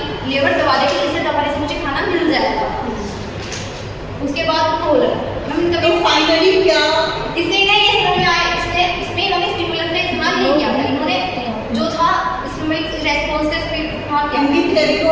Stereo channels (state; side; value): identical; both; correlation 1.00